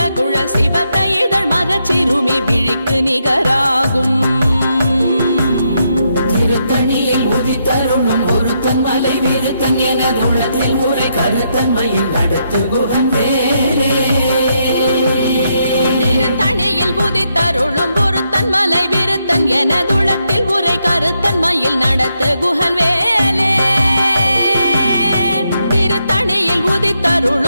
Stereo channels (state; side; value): inverted; both; correlation -0.80